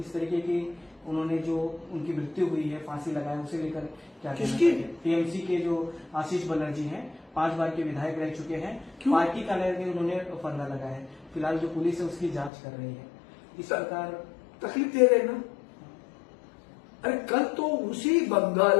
तरीके की उन्होंने जो उनकी मृत्यु हुई है, फांसी लगाया, उसे लेकर क्या किसकी? टीएमसी के जो आशीष बनर्जी हैं, 5 बार के विधायक रह चुके हैं, पार्टी कार्यालय में उन्होंने फंदा लगाया है। फिलहाल जो पुलिस है उसकी जांच कर रही है। इस प्रकार तकलीफ दे रहे ना। अरे कल तो उसी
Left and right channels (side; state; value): right; drops out; at 12.5 s